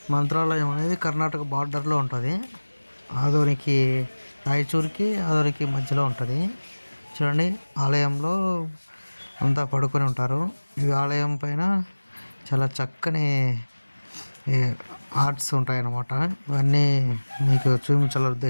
మంత్రాలయం అనేది కర్ణాటక బార్డర్లో ఉంటుంది. ఆదోనికి రాయచూర్కి ఆదోనికి మధ్యలో ఉంటుంది. చూడండి, ఆలయంలో అంతా పడుకొని ఉంటారు. ఈ ఆలయం పైన చాలా చక్కని ఆర్ట్స్ ఉంటాయన్నమాట. ఇవన్నీ మీకు చూపించాల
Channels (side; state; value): both; inverted; correlation -1.00